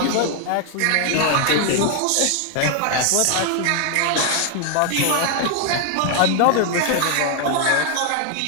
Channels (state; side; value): different; both; correlation 0.00